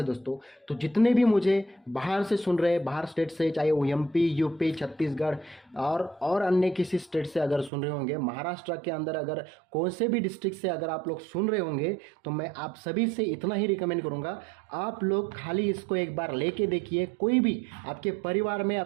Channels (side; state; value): left; drops out; at 7.7 s